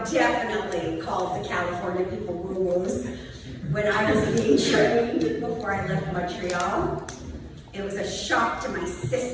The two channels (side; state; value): both; identical; correlation 1.00